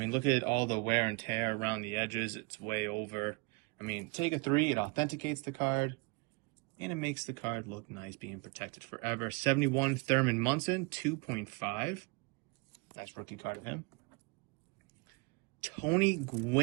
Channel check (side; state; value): left; quieter; 28.9 dB